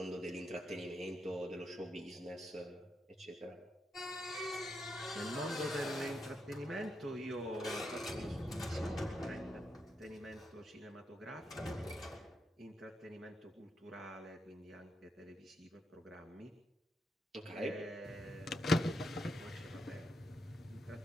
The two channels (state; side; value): normal; both; correlation 0.82